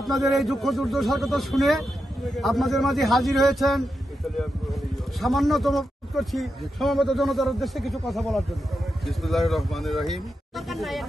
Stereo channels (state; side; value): normal; both; correlation 0.87